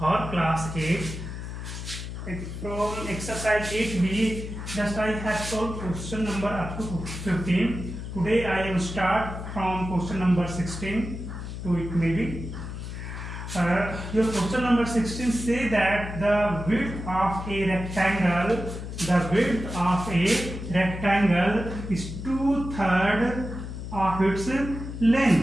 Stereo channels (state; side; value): noise; left; hum, 8 dB below the sound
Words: class 8. From exercise 8b, just I have solved question number up to 15. Today I am start from question number 16 to it maybe. Your question number 16 say that the width of a rectangle is 2/3 of its